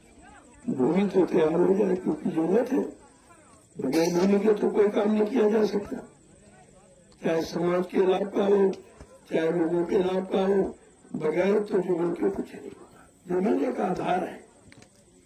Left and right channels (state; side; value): identical; both; correlation 1.00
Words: भूमि तो तैयार हो जाए, क्योंकि जरूरत है। बगैर भूमि के तो कोई काम नहीं किया जा सकता, चाहे समाज के लाभ का हो, चाहे लोगों के लाभ का हो। बगैर तो जमीन के कुछ नहीं होगा। जमीन एक आधार है,